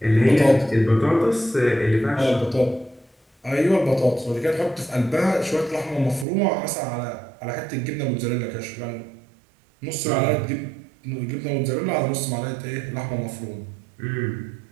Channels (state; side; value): drops out; left; at 6.2 s